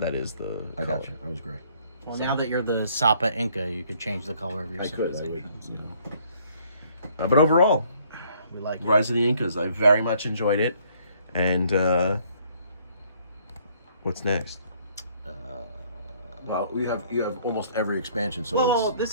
is the. I got color. you. I was gray. Well, now that you're the Sapa Inca, you could change the color of your I could. I would. civilizations. You know. But overall, We like it. Rise of the Incas, I very much enjoyed it. And what's next? Well, you have almost every expansion. So Well,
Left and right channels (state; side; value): inverted; both; correlation -0.63